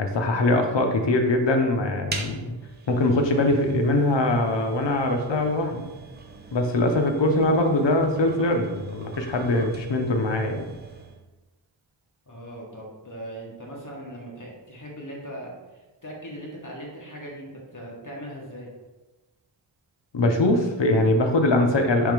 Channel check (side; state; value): both; normal; correlation 0.18